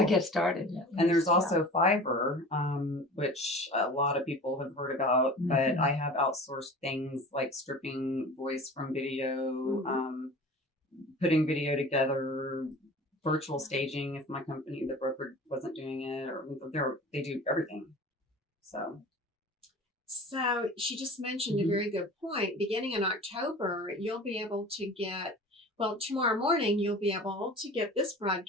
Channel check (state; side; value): normal; both; correlation 0.39